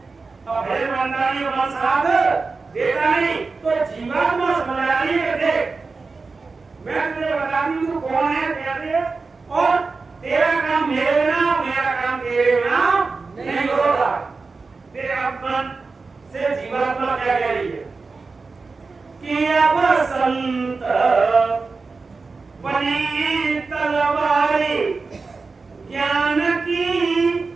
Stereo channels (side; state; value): left; quieter; 4.2 dB